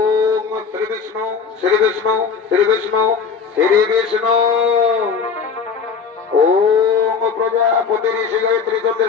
শ্রী বিষ্ণু শ্রী বিষ্ণু শ্রী বিষ্ণু শ্রী বিষ্ণু। ওম প্রজাপতি ঋষি গায়ত্রী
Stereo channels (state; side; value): quieter; right; 5.7 dB